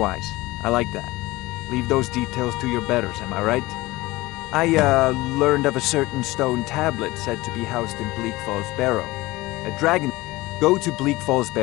I like that. Leave those details to your betters, am I right? I, learned of a certain stone tablet said to be housed in Bleak Falls Barrow. A dragon... Go to Bleak Falls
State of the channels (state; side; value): quieter; right; 19.8 dB